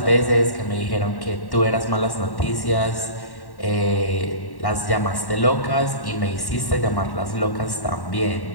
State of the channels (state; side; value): late; right; 1.1 ms